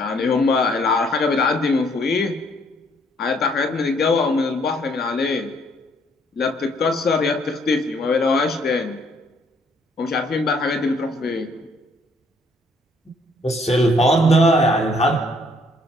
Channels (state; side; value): normal; both; correlation 0.65